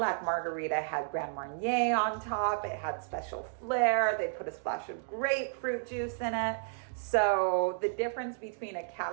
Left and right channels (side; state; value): left; silent; digital silence